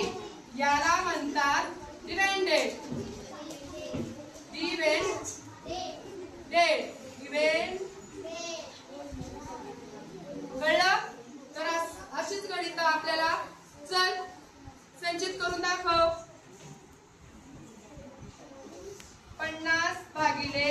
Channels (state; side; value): identical; both; correlation 1.00